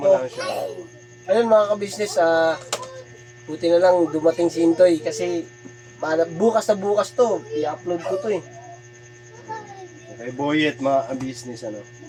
ko. lang siya. Ayun mga ka-business, buti na lang dumating si Intoy kasi bukas na bukas to, i-upload ko to eh. Okay, Boyet, mga business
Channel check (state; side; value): identical; both; correlation 1.00